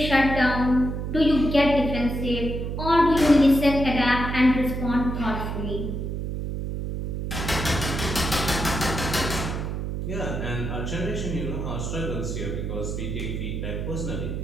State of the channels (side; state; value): right; noise; hum, 3 dB below the sound